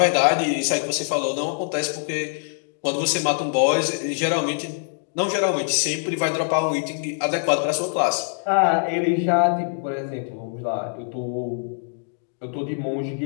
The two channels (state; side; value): silent; right; 63 dB below the other